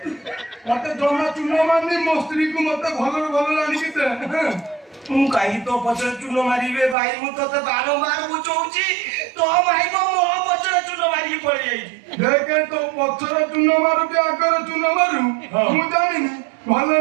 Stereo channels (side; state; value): left; drops out; at 7.0 s